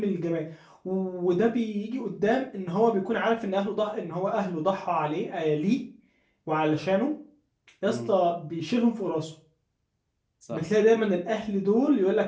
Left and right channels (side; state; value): both; identical; correlation 1.00